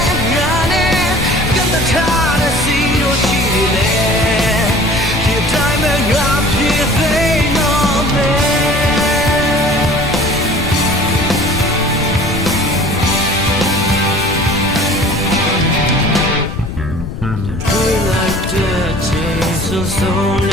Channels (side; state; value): left; noise; rumble, 7 dB below the sound